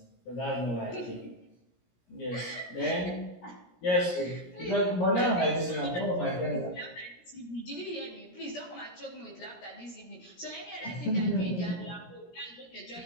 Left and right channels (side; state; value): right; late; 17 ms